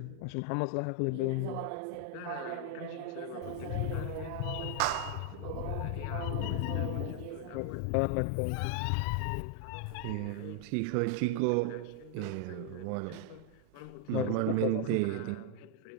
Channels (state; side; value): different; both; correlation 0.00